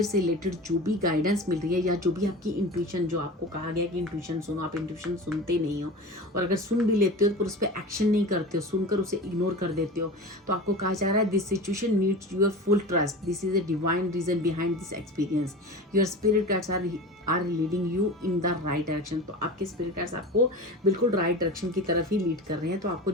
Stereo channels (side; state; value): both; normal; correlation 0.31